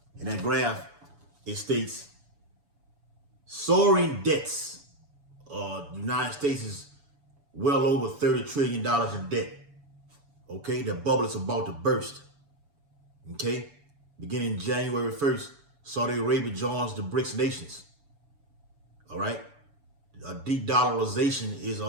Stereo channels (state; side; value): late; left; 7.0 ms